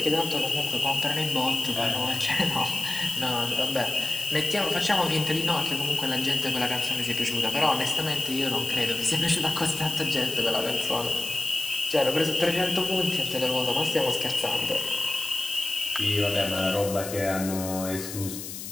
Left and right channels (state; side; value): noise; left; hiss, 9 dB below the sound